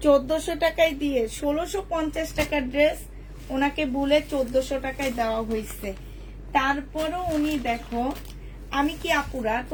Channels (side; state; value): both; identical; correlation 1.00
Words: 1400 টাকায় দিয়ে 1650 টাকার ড্রেস ওনাকে বলে 1400 টাকায় দেওয়া হয়েছে। তারপরও উনি, দেখো আমি কি আপুরা,